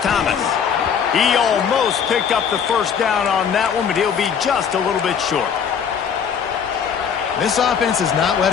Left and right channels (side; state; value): right; quieter; 7.3 dB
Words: He almost picked up the first down on that one, but he'll be just a little bit short. This offense is not